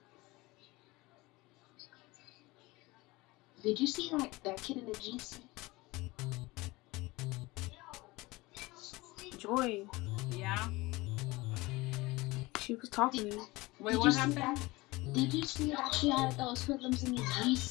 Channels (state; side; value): quieter; right; 21.7 dB